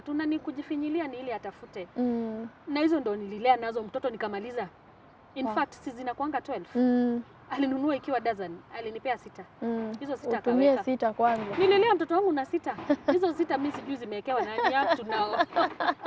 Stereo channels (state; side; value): identical; both; correlation 1.00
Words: tu na nikujifinyilia ni ile atafute. Na hizo ndo nililea nazo mtoto nikamaliza. In fact si zinakuanga 12. Alinunua ikiwa dozen, alinipea 6. Hizo 6 akaweka. Utumie 6 kwanza. Nililea mtoto wangu na 6. Hizo 6 mimi sijui zimewekewa nani hapo nao.